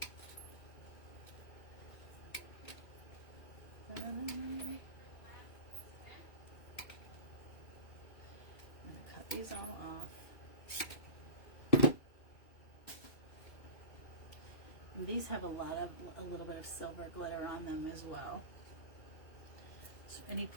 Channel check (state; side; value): late; right; 2.6 ms